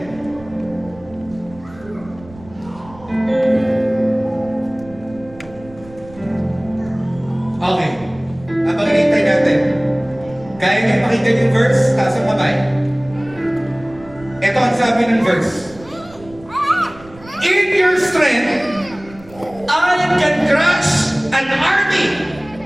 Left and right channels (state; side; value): noise; right; rumble, 21 dB below the sound